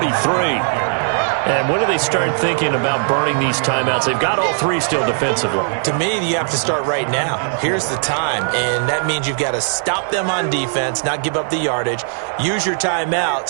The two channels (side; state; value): left; silent; 57 dB below the other